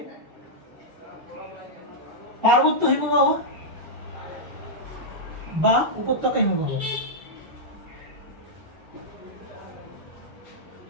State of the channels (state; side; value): normal; both; correlation -0.07